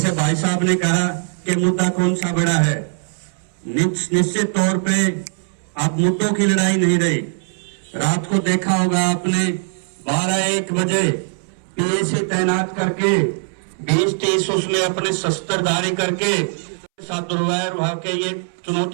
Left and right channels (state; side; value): silent; left; 66 dB below the other